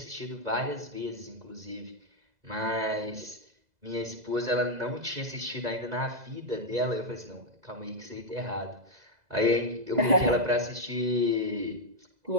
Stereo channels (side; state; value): left; late; 2.0 ms